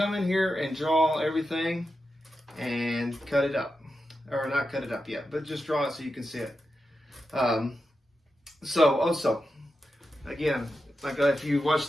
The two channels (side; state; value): both; normal; correlation 0.89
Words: in here and draw everything and cut it up. Or not cut it up yet, but just draw it so you can see it. So also, again, like if you